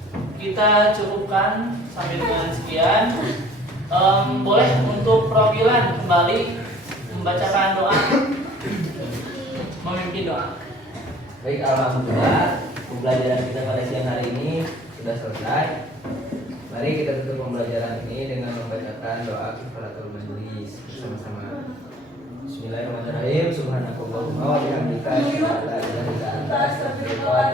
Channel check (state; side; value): normal; both; correlation 0.52